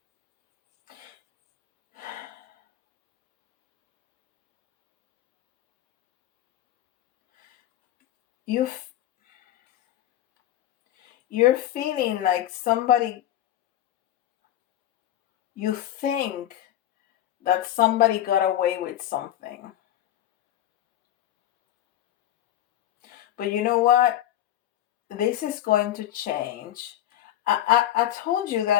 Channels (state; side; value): quieter; right; 12.7 dB